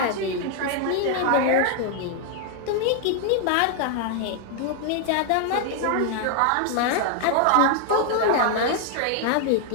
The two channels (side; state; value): both; different; correlation 0.00